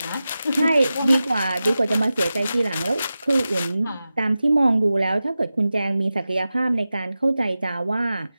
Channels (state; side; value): inverted; both; correlation -0.94